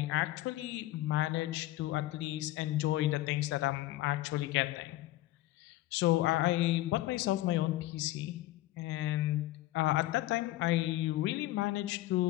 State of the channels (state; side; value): quieter; right; 16.5 dB